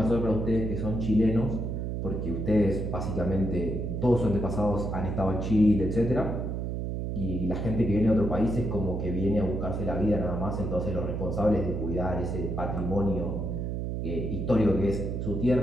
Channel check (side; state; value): right; noise; hum, 2 dB below the sound